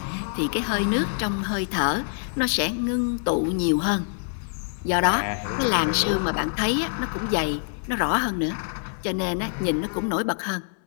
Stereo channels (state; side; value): silent; right; 61 dB below the other